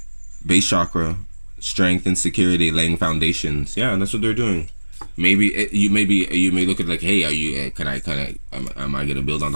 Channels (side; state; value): both; inverted; correlation -1.00